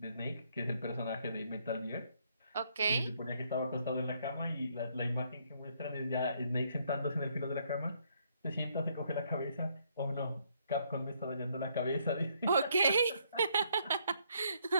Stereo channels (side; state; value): both; inverted; correlation -0.70